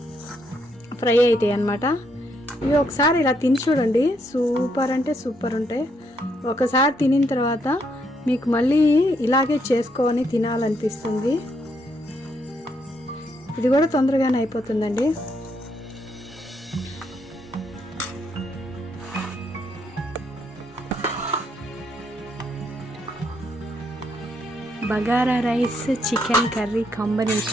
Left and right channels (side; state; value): both; normal; correlation 0.75